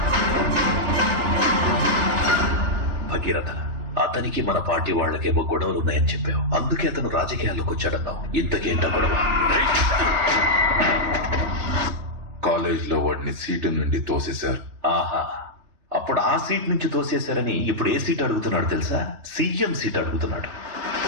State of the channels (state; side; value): late; left; 3.3 ms